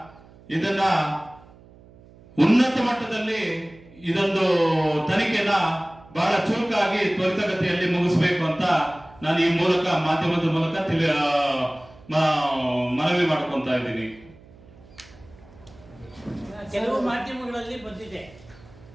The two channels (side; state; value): right; noise; hum, 24 dB below the sound